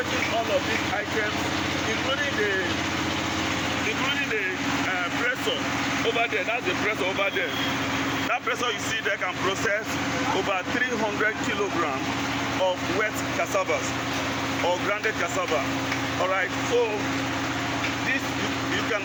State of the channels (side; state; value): both; identical; correlation 1.00